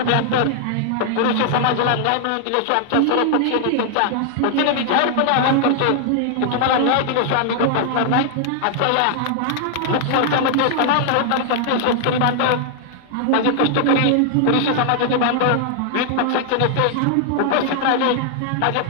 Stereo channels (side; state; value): both; different; correlation 0.00